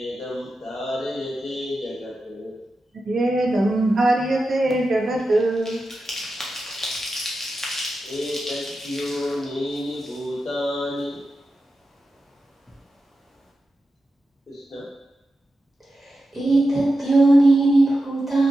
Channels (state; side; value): normal; both; correlation 0.91